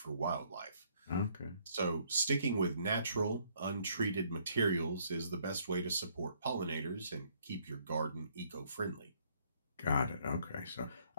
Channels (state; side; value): inverted; both; correlation -0.66